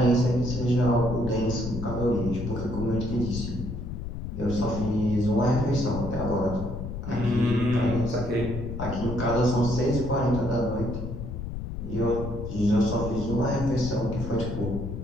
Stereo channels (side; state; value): left; noise; rumble, 6 dB below the sound